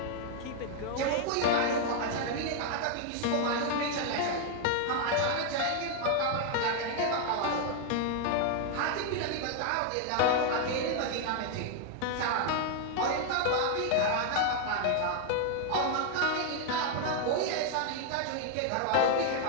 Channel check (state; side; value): different; both; correlation 0.00